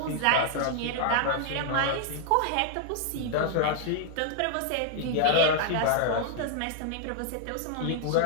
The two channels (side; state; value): both; different; correlation -0.01